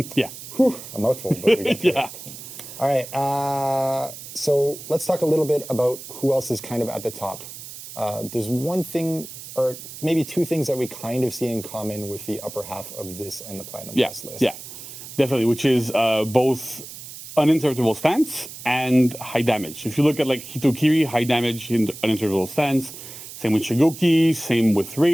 Yeah. Whew, a mouthful, but we got through Yeah. it. All right, so let's talk a little bit about who else is kind of at the top. There's one thing, or maybe two things that we kind of see in common with the upper half of this and the Platinum Plus list. Yeah, definitely, which is both uninterruptible stance and high damage. If you look at like Hitokiri, high damage in uninterruptible stance, same with Shigoki, same with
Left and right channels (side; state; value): right; noise; hiss, 13 dB below the sound